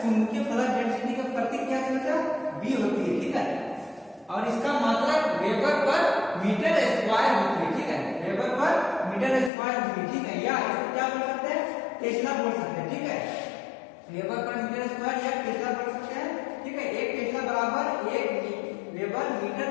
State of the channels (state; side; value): drops out; right; at 9.5 s